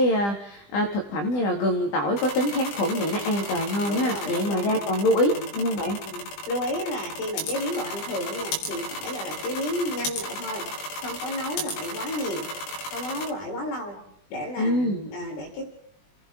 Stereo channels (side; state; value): right; late; 20 ms